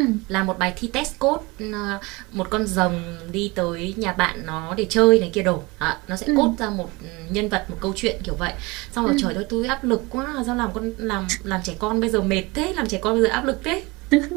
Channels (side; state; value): left; quieter; 24.3 dB